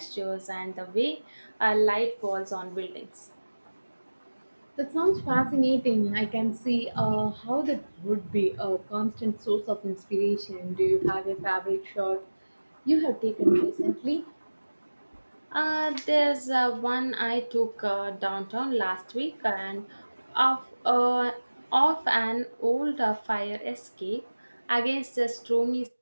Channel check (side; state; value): both; inverted; correlation -1.00